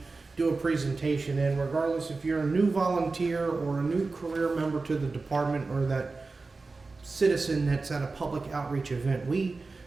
do a presentation in, regardless if you're a new volunteer or a new career member to the department or that citizen that's at a public outreach event. We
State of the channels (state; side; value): quieter; left; 3.8 dB